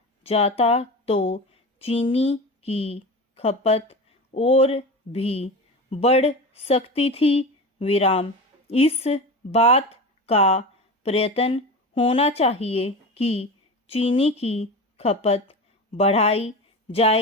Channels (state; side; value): normal; both; correlation 0.27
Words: जाता तो चीनी की खपत और भी बढ़ सकती थी विराम। इस बात का प्रयत्न होना चाहिए कि चीनी की खपत बढ़ाई